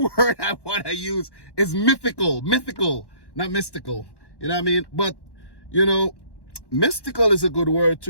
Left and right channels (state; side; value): late; right; 1.1 ms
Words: word I want to use is mythical, not mystical. You know what I mean? But, you know, mystical is a good word